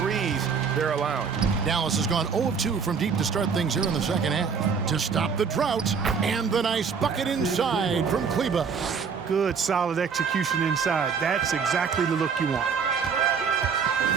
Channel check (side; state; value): left; quieter; 6.0 dB